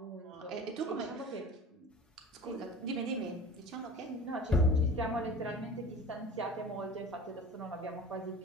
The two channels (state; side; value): normal; both; correlation 0.38